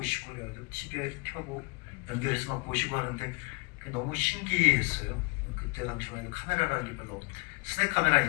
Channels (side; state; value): right; quieter; 29.7 dB